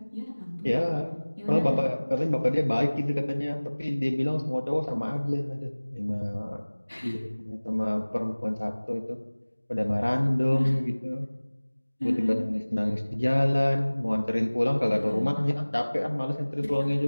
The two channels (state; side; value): inverted; both; correlation -1.00